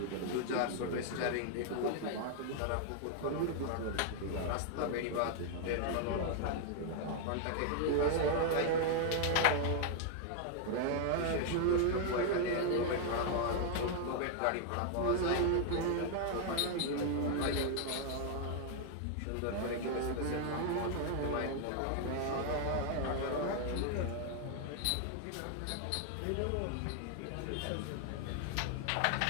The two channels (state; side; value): different; both; correlation 0.00